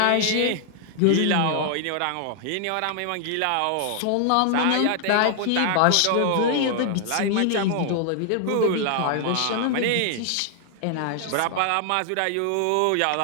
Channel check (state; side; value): different; both; correlation 0.00